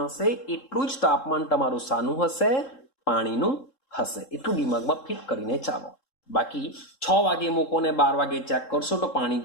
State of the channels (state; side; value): late; right; 3.7 ms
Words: હશે એટલું જ તાપમાન તમારું શાનું હશે? પાણીનું હશે. એટલું દિમાગમાં ફિટ કરીને ચાલો. બાકી 6 વાગે મૂકો ને 12 વાગે ચેક કરશો તો પાણી